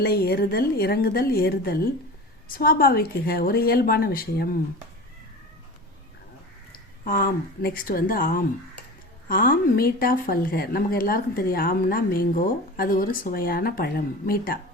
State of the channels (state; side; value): normal; both; correlation 0.33